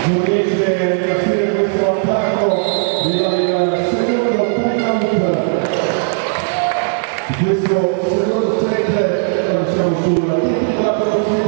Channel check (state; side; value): silent; left; 69 dB below the other